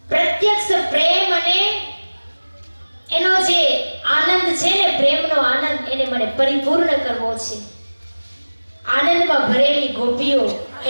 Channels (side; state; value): both; inverted; correlation -1.00